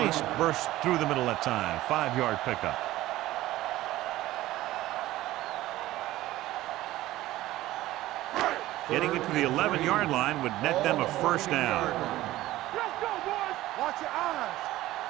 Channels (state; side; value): quieter; left; 16.0 dB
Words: burst through the middle that time. 5-yard pickup. Getting it to the 11-yard line would net them a first down. Let's go, boys. Watch your eyes.